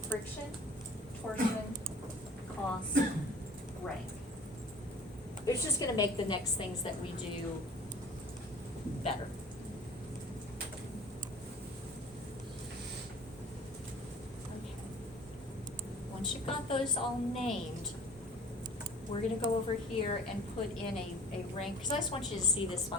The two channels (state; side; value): normal; both; correlation 0.47